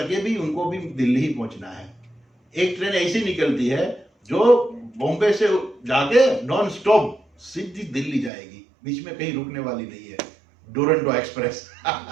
भी उनको भी दिल्ली ही पहुंचना है। एक ट्रेन ऐसी निकलती है जो बॉम्बे से जाके नॉन स्टॉप सीधी दिल्ली जाएगी, बीच में कहीं रुकने वाली नहीं है। डुरंटो एक्सप्रेस।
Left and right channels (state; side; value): drops out; left; at 8.3 s